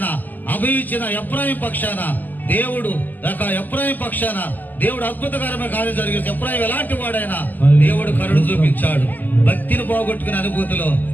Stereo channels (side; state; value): right; late; 0.085 ms